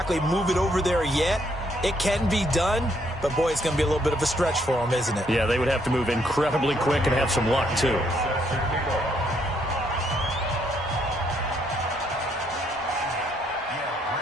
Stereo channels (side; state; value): both; normal; correlation 0.71